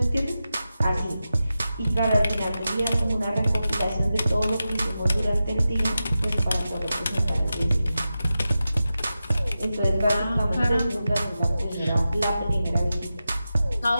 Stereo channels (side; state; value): both; inverted; correlation -0.92